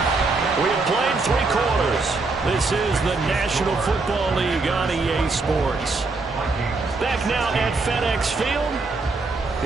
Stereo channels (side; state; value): left; quieter; 3.7 dB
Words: We have played 3 quarters. This is the National Football League on EA Sports. Back now at FedEx Field.